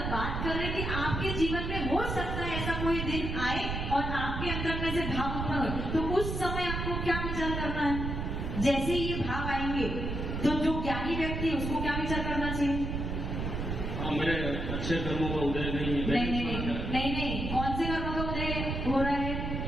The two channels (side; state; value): right; noise; rumble, 3 dB below the sound